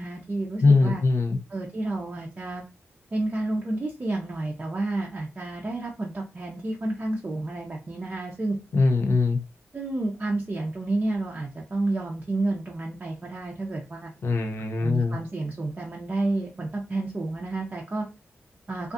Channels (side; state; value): both; normal; correlation 0.91